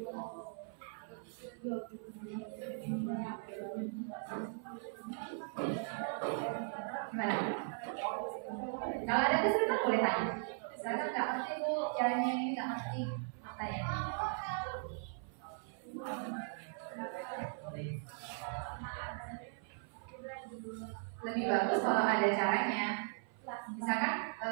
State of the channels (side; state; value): left; silent; 52 dB below the other